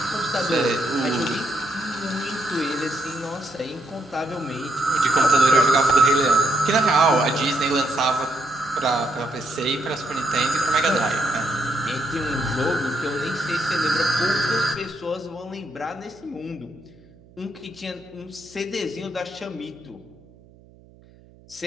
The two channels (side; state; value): right; noise; hum, 26 dB below the sound